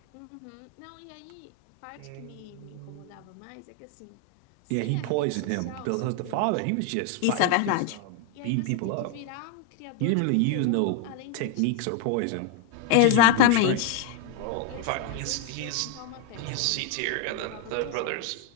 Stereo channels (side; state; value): both; different; correlation 0.00